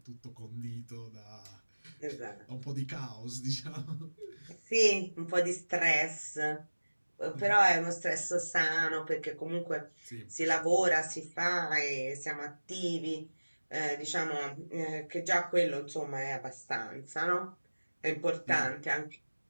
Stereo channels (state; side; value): inverted; both; correlation -1.00